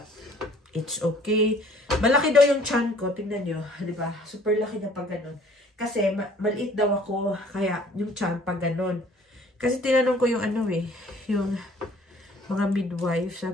it's okay. Malaki daw yung tiyan ko. Tingnan nyo. Diba? Super laki na pag ganun. Kasi maliit daw ako. Kaya yung tiyan pag ganun. Kasi tinanong ko yung yung mga midwife.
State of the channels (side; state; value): both; normal; correlation 0.55